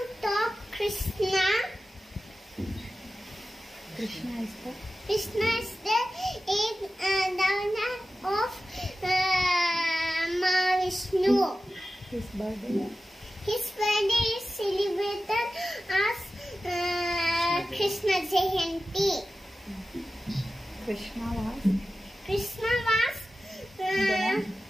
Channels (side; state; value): both; normal; correlation 0.94